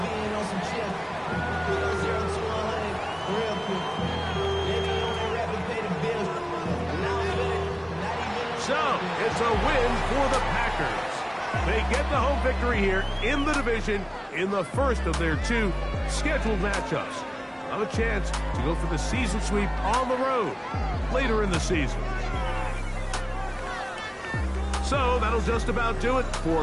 So, it's a win for the Packers. They get the home victory here in the division in the first of their 2 scheduled matchups. Have a chance to go for the season sweep on the road later in the season. So that'll just about do it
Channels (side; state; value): both; identical; correlation 1.00